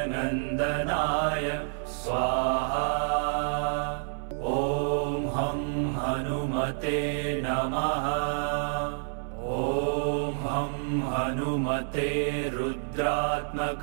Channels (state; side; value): silent; left; 59 dB below the other